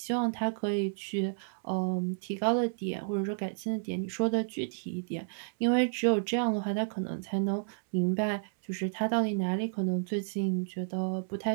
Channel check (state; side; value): silent; left; digital silence